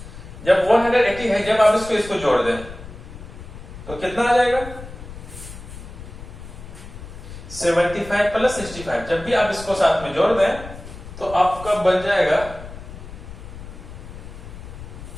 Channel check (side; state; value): left; noise; rumble, 13 dB below the sound